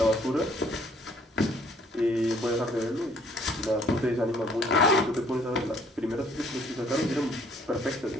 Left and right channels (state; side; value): normal; both; correlation 0.61